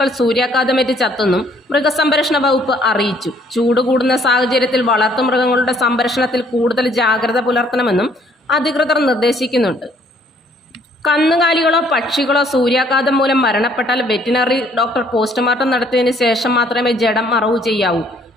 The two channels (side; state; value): both; normal; correlation 0.63